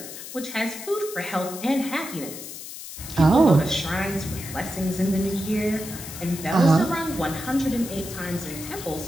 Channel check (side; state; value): left; noise; hiss, 11 dB below the sound